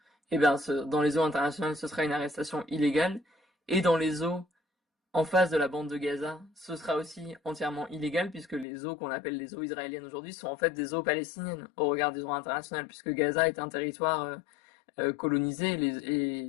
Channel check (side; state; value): right; drops out; at 8.7 s